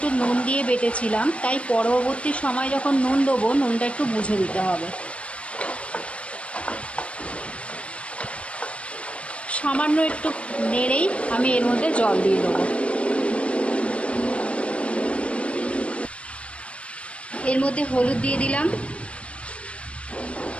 নুন দিয়ে বেটেছিলাম, তাই পরবর্তী সময় যখন নুন দেবো নুনটা একটু বুঝে দিতে হবে। সামান্য একটু নেড়েই আমি এর মধ্যে জল দিয়ে দেবো। এর মধ্যে হলুদ দিয়ে দিলাম।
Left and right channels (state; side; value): late; right; 0.061 ms